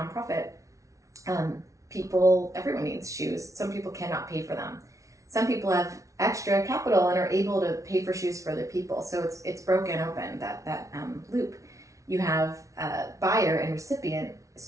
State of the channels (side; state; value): left; late; 0.15 ms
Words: Everyone needs shoes. Some people cannot pay for them. Some people have extra capital and are able to pay for shoes for other people. So it's broken open, that loop. You have buyer and recipient as